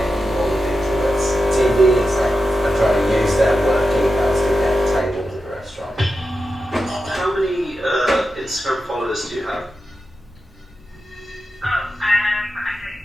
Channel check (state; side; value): normal; both; correlation 0.90